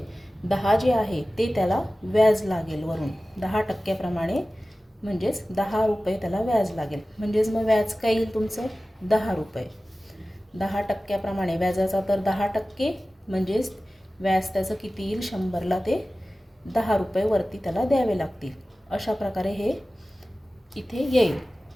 10 जे आहे ते त्याला व्याज लागेल वरून 10%प्रमाणे. म्हणजेच 10 रुपये त्याला व्याज लागेल. म्हणजेच मग व्याज काय येईल तुमचं, 10 रुपये. 10%प्रमाणे व्याजाचा दर 10%, म्हणजेच व्याज त्याचं किती येईल, 100ला ते 10 रुपये वरती त्याला द्यावे लागतील. अशा प्रकारे हे इथे येईल.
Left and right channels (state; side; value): normal; both; correlation 0.96